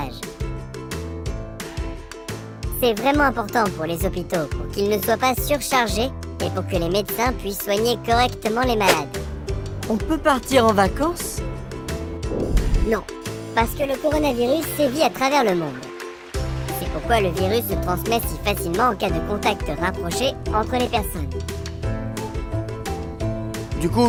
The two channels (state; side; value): identical; both; correlation 1.00